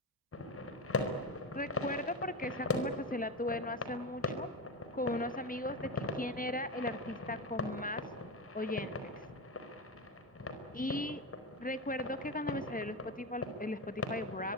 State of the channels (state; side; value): normal; both; correlation 0.19